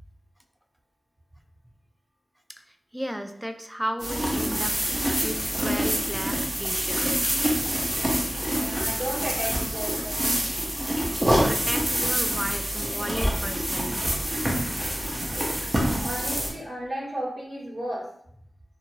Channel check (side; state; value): both; normal; correlation 0.96